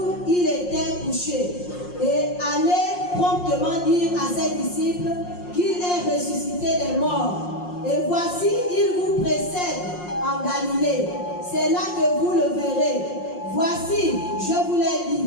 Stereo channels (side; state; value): right; late; 5.6 ms